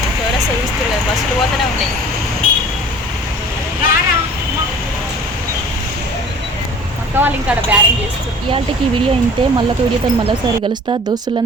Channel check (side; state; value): both; normal; correlation 0.46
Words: చౌరస్తా చూస్తారు కదా, బస్సులు పోతూనే ఉన్నాయి. అక్క వాళ్ళు ఇంకా బ్యారింగ్ చేస్తారు. ఇయాల్టికి వీడియో ఇంతే. మళ్ళొక వీడియోతో మళ్ళీసారి కలుస్తా.